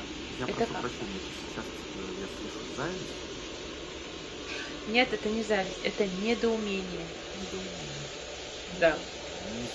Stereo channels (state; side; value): identical; both; correlation 1.00